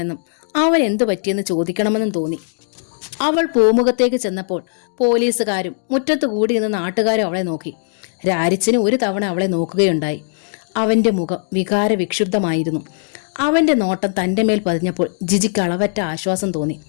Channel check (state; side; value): silent; right; digital silence